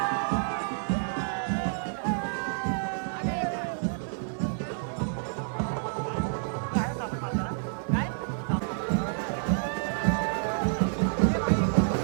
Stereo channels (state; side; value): silent; left; 59 dB below the other